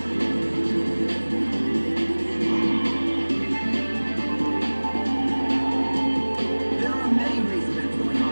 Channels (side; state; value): both; inverted; correlation -1.00